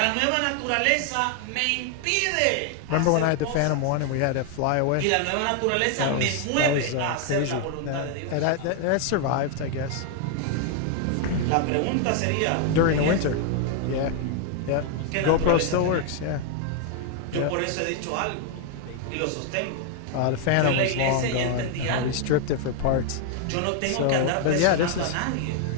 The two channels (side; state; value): both; different; correlation 0.00